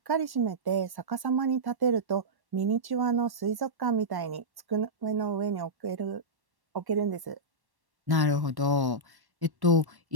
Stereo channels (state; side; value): late; left; 1.1 ms